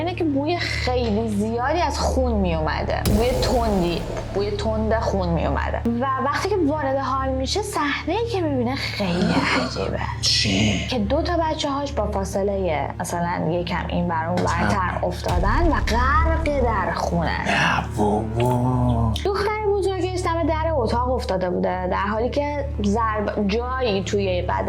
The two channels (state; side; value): identical; both; correlation 1.00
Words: که بوی خیلی زیادی از خون میومده، بوی تند خون میومده و وقتی که وارد حال میشه صحنه‌ای که میبینه خیلی عجیبه. چی؟ که 2 تا بچه‌هاش با فاصله مثلا یکم این بر اون برتر افتادن و غرق در خونه. دختر بزرگش دم در اتاق افتاده بوده در حالی که جایی توی